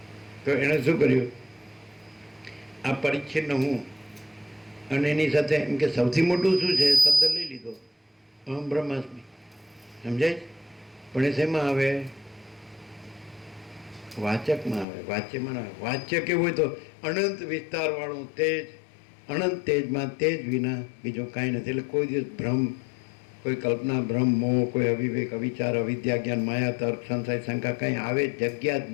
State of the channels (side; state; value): right; drops out; at 14.9 s